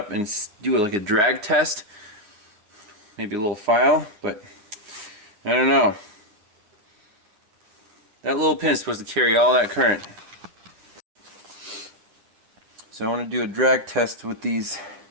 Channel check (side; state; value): left; late; 9.6 ms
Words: and do it like a drag test. Maybe a little file, but I don't know. That little pin is supposed to carry all that current. So I want to do a drag test with these.